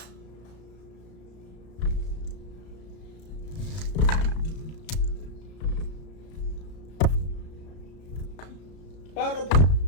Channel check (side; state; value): right; late; 34 ms